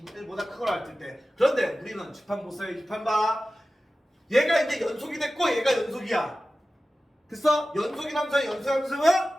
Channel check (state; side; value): normal; both; correlation 0.95